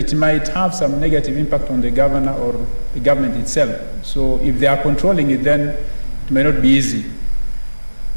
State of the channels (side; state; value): both; inverted; correlation -1.00